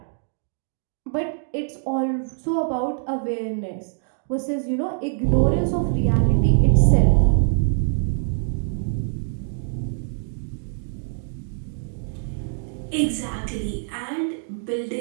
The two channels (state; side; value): silent; left; digital silence